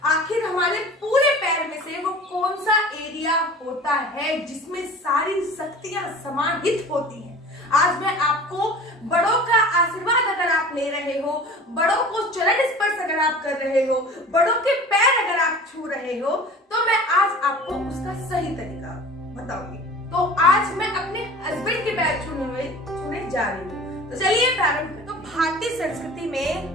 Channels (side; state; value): both; normal; correlation 0.41